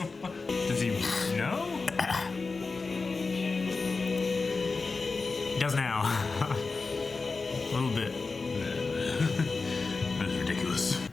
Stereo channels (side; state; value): right; quieter; 4.1 dB